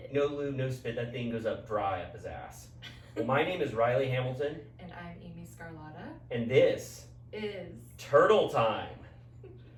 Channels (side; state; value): both; identical; correlation 1.00